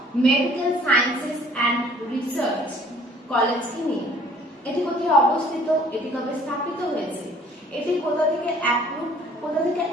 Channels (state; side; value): normal; both; correlation 0.55